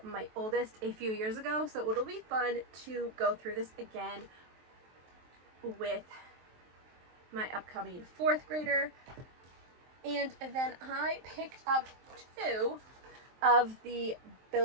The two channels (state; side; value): late; left; 23 ms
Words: my oldest a few years ago, so it'll be fun to go through this again with my upcoming 4th grader. And then I picked up 2 of the